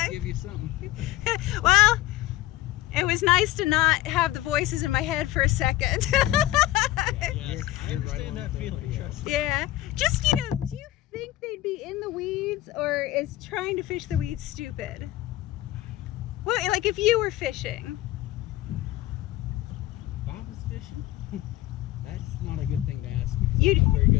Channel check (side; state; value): right; quieter; 15.7 dB